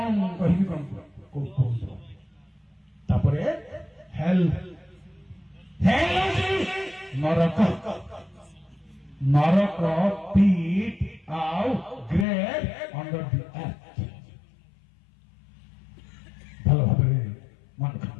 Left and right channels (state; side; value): drops out; right; at 12.2 s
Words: ମୁଁ କହିବି, କଣ କୁହନ୍ତୁ। ତାପରେ ହେଲ୍, ହେଲ୍ ହେଉଛି ନରକ। ନରକ ପିଟ୍ ଆଉ ଗ୍ରେଭ୍ ଅଣ୍ଡର ଦି ଆର୍ଥ। ଭଲ ଭାବରେ ମନେ